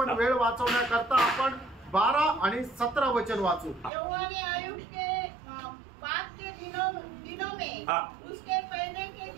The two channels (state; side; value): drops out; left; at 3.9 s